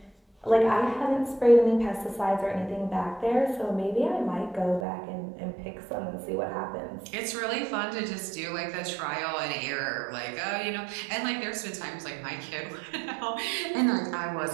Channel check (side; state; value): left; drops out; at 4.9 s